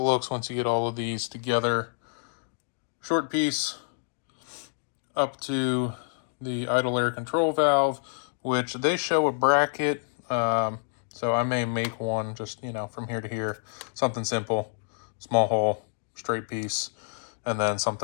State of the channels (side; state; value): right; silent; digital silence